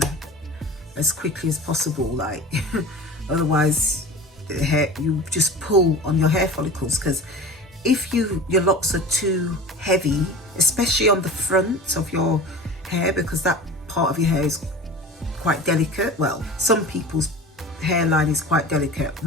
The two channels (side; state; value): both; normal; correlation 0.36